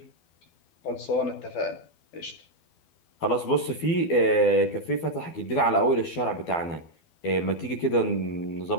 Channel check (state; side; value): late; right; 12 ms